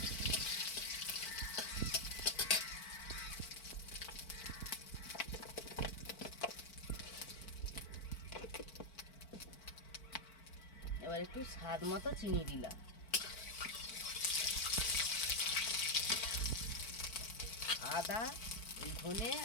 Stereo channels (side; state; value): right; late; 4.5 ms